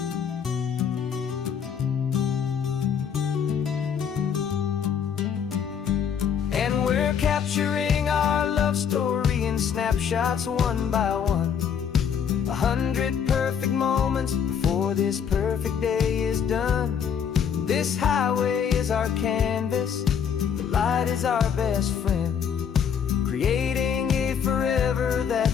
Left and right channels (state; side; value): quieter; right; 7.6 dB